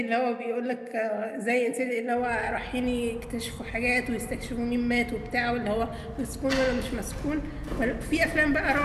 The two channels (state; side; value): identical; both; correlation 1.00